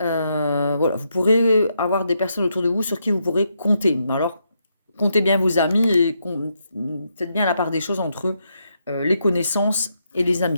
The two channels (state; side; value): inverted; both; correlation -0.80